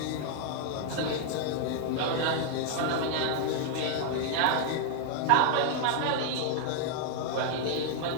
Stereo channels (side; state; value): both; different; correlation 0.00